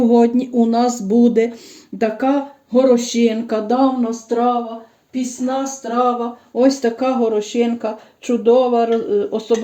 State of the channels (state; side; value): identical; both; correlation 1.00